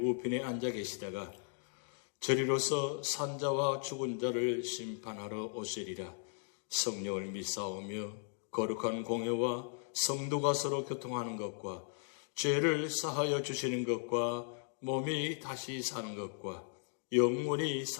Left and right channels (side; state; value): right; silent; 53 dB below the other